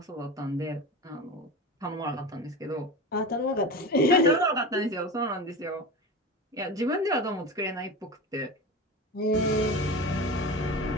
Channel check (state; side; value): normal; both; correlation 0.28